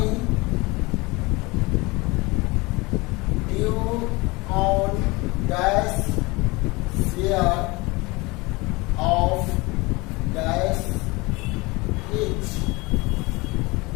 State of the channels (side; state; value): right; quieter; 24.1 dB